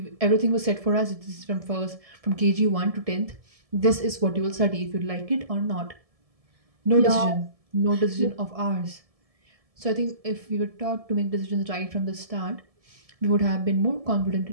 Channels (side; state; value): left; late; 1.7 ms